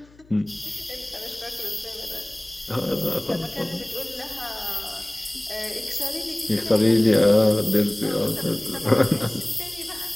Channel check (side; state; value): left; noise; hum, 27 dB below the sound